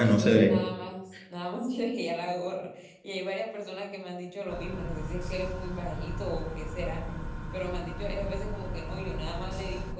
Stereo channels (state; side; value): identical; both; correlation 1.00